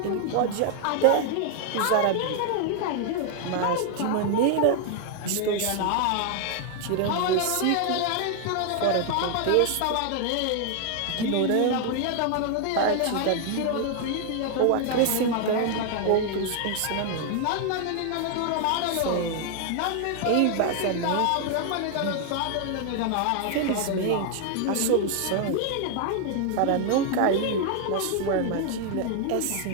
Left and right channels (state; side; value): different; both; correlation 0.00